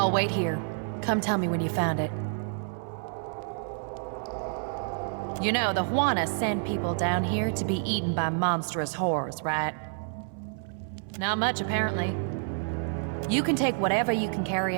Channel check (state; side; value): silent; left; 59 dB below the other